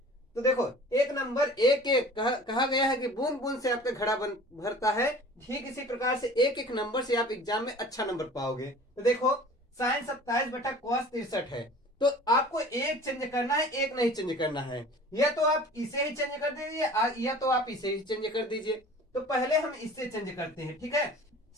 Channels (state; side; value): normal; both; correlation 0.44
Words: तो देखो, एक नंबर एक एक कहा गया है कि बूंद बूंद से आपका घड़ा भरता है, ठीक इसी प्रकार से एक एक नंबर से आप एग्जाम में अच्छा नंबर पाओगे। तो देखो, साइन 27 बटा कॉस 63 है, तो आपको एक चेंज करना है, एक नहीं चेंज करना है। या तो आप इसे ही चेंज कर दीजिए या तो आप इसे ही चेंज कर दीजिए। तो पहले हम इससे चेंज करते हैं, ठीक है।